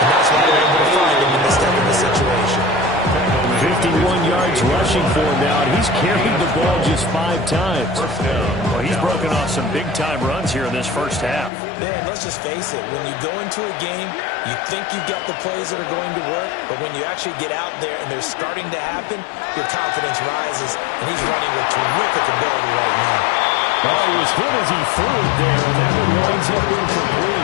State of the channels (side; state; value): right; drops out; at 11.5 s